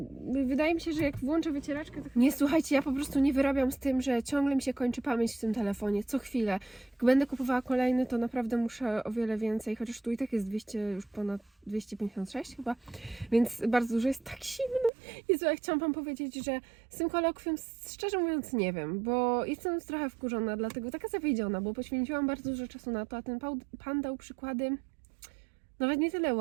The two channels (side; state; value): left; drops out; at 14.9 s